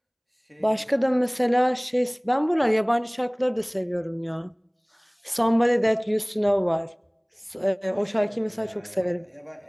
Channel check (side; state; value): both; identical; correlation 1.00